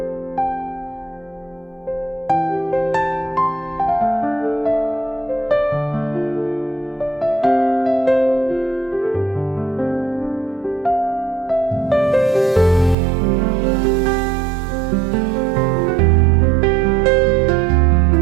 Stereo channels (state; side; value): drops out; left; at 13.0 s